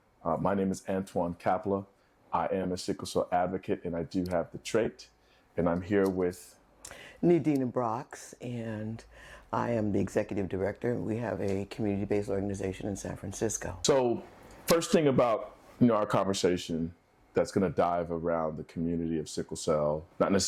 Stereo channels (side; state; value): both; identical; correlation 1.00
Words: My name is Antoine Kapla. I am a sickle cell advocate, and I do have the trait. And I'm here with NeDina, and I am the executive director. We have a community-based organization in San Francisco. So, first thing about our conversation that's going to dive around the community of sickle cell, not